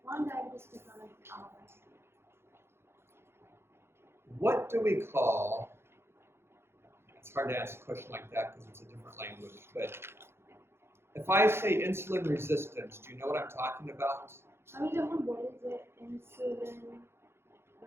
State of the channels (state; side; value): late; left; 0.12 ms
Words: 1 ডায়াবেটিস থেকে অনেক আলাদা। What do we call, it's hard to answer a question like that because it's a different language, but if I say insulin resistance, do you know what I'm talking about? আমি যখন বলি যে insulin